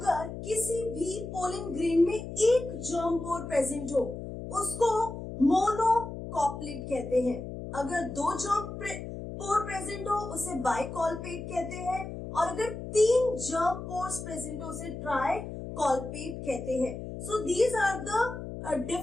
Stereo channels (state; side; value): noise; left; hum, 8 dB below the sound